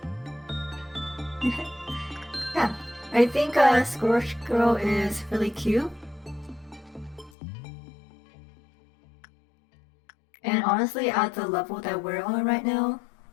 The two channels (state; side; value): drops out; right; at 7.3 s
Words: Yeah, I think Scorch Girl is really cute. And honestly, at the level that we're on right now,